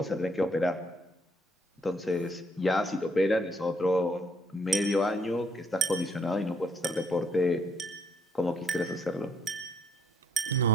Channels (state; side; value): normal; both; correlation 0.69